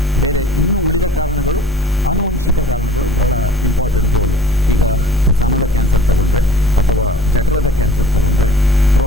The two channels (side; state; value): both; normal; correlation 0.49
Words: ಬೇರೆ ಇನ್ನೂ ಉಳಿದ ಕಾರಣಗಳು, ಆನುವಂಶಿಕ ಕಾರಣಗಳು ಬಹಳ ಇಂಪಾರ್ಟೆಂಟ್ ರೋಲು. ಈಗ ಸ್ತನದ ಕ್ಯಾನ್ಸರ್ ತಗೊಂಡ್ರೆ, ಅಥವಾ ಜಠರದ ಕ್ಯಾನ್ಸರ್ ತಗೊಂಡ್ರೆ,